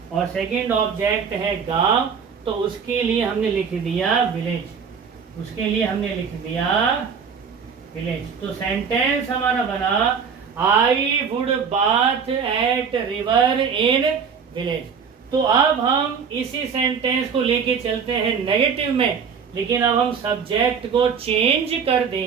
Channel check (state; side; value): quieter; left; 6.4 dB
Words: और सेकंड ऑब्जेक्ट है गांव। तो उसके लिए हमने लिख दिया विलेज। उसके लिए हमने लिख दिया विलेज। तो सेंटेंस हमारा बना I would bath at river in village. तो अब हम इसी सेंटेंस को लेके चलते हैं नेगेटिव में, लेकिन अब हम सब्जेक्ट को चेंज कर